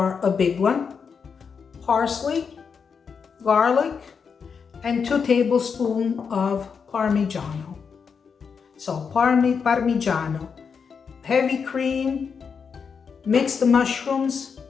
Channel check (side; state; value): right; quieter; 6.1 dB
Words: a big one, parsley, garlic, and 2 tablespoons of Parmigiano. So Parmigiano, heavy cream, mixed mushrooms,